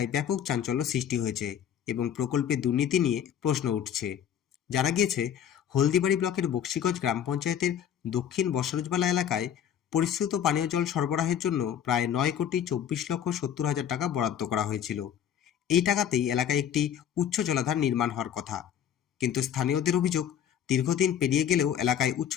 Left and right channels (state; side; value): quieter; right; 9.3 dB